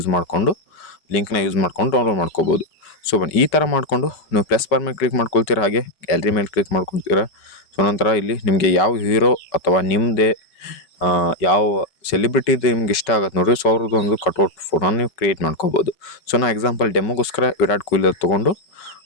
ಮಾಡಿಕೊಂಡು ಲಿಂಕ್ನ ಯೂಸ್ ಮಾಡ್ಕೊಂಡು ಡೌನ್ಲೋಡ್ ಮಾಡ್ಕೋಬೋದು. ಸೊ ಬನ್ನಿ ಈ ಥರ ಮಾಡಿಕೊಂಡು ನೀವು ಪ್ಲಸ್ ಬಾರ್ ಮೇಲೆ ಕ್ಲಿಕ್ ಮಾಡ್ಕೊಳ್ತೀರಾ. ಹಾಗೆ ಗ್ಯಾಲರಿ ಮೇಲೆ ಕ್ಲಿಕ್ ಮಾಡ್ಕೊಳ್ತೀರಾ. ಸೊ ನಂತರ ಇಲ್ಲಿ ನಿಮಗೆ ಯಾವ ಹೀರೋ ಅಥವಾ ನಿಮ್ಮದೇ ಯಾವ ಸೆಲಿಬ್ರಿಟಿದು ನಿಮ್ಗೆ ಇಷ್ಟ ಆಗುತ್ತೆ ನೋಡಿರಿ. ಸೊ ಅವ್ರದ್ದು ಒಂದು ಕಟ್ಔಟ್ ಫೋಟೋನ ನೀವು ಕ್ರಿಯೇಟ್ ಮಾಡ್ಕೋಬೋದು. ಸೊ ನಾನು ಎಕ್ಸಾಂಪಲ್ ಡೆಮೋಗೋಸ್ಕರ ವಿರಾಟ್ ಕೊಹ್ಲಿ ತೊಗೊಂಡು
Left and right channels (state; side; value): late; right; 5.2 ms